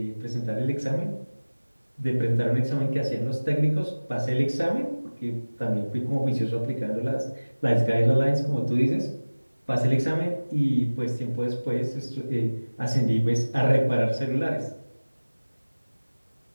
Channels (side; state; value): both; inverted; correlation -1.00